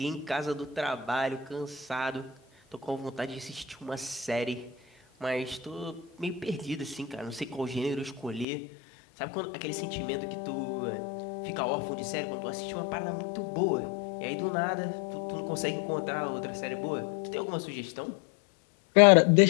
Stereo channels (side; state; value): right; drops out; at 8.5 s